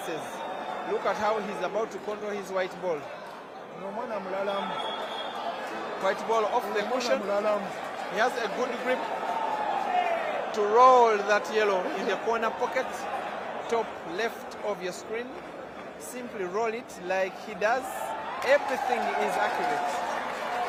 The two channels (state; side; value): identical; both; correlation 1.00